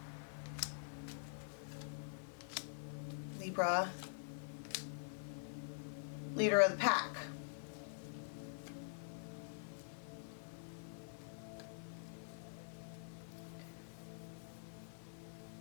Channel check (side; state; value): right; silent; digital silence